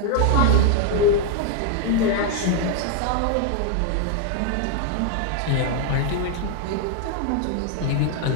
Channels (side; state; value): both; different; correlation 0.00